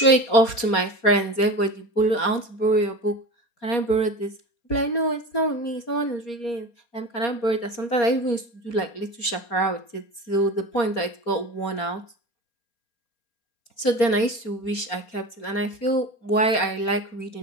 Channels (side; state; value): right; late; 4.3 ms